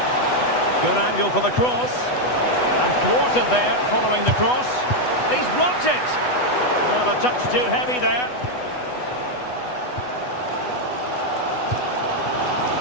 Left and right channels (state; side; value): late; right; 8.1 ms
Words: Good angle for the cross. And thwarted there following the cross. He's blocked it. Well, a touch too heavy there.